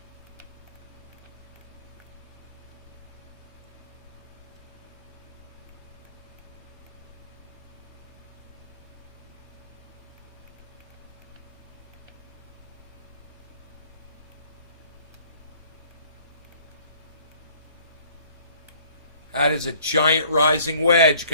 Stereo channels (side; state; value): both; inverted; correlation -0.56